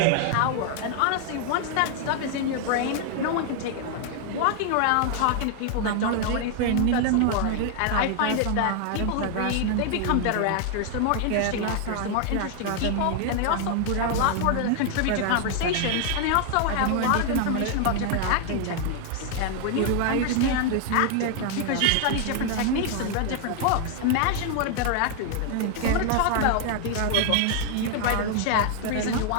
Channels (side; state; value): both; different; correlation 0.00